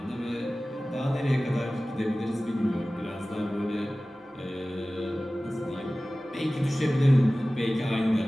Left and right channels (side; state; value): both; normal; correlation 0.97